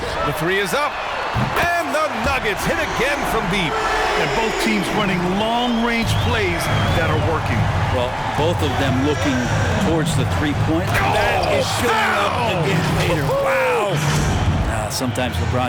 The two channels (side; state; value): both; identical; correlation 1.00